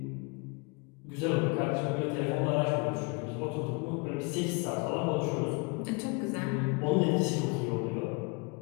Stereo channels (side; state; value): right; quieter; 30.5 dB